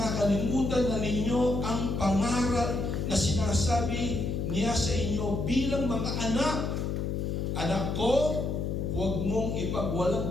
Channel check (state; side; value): noise; left; hum, 1 dB below the sound